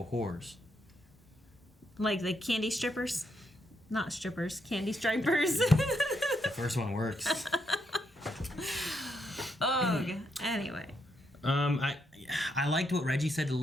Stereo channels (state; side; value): normal; both; correlation 0.78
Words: whores. Like the candy strippers? Not strippers, candy stripers. The first one works. Oh, anyway. I liked what Reggie said to